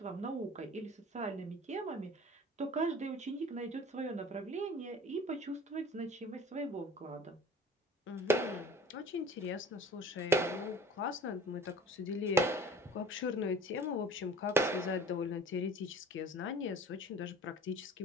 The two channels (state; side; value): normal; both; correlation 0.44